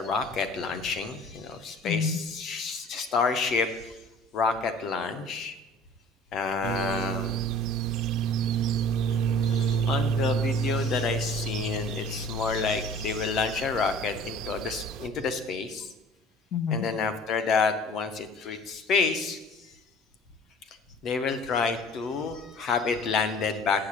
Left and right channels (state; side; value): normal; both; correlation 0.47